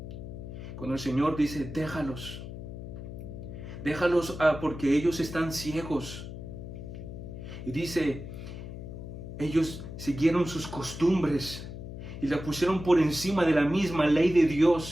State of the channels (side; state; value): left; noise; hum, 10 dB below the sound